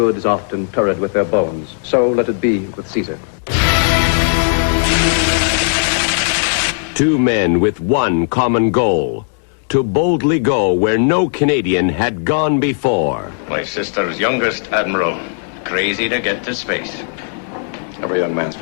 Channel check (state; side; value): silent; right; 68 dB below the other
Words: is often turred with their bones. So let it be with Caesar. 2 men with one common goal: to boldly go where no Canadian had gone before. My sister's youngest admiral, crazy to get to space. Every young man's